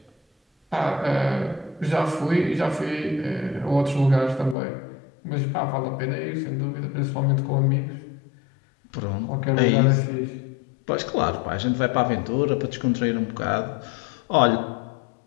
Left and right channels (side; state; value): right; drops out; at 4.5 s